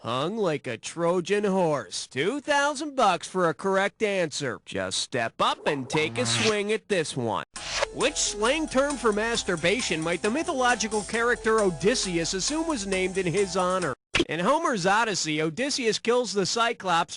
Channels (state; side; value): identical; both; correlation 1.00